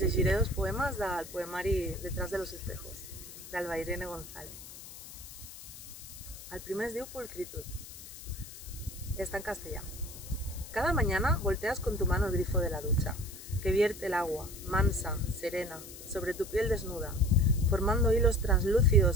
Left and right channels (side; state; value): left; noise; hiss, 14 dB below the sound